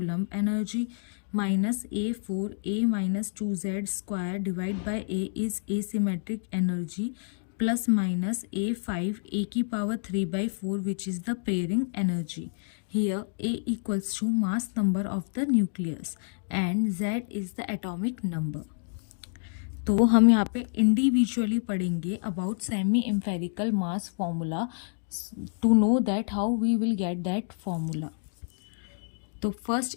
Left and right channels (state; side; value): silent; right; digital silence